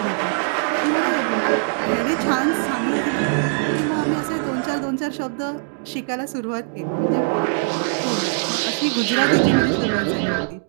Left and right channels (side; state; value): left; silent; 65 dB below the other